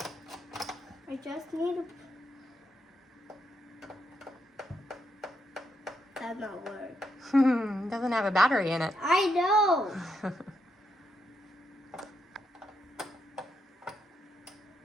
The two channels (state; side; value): normal; both; correlation 0.80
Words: I just need to. That not work. Doesn't have a battery in it. I know.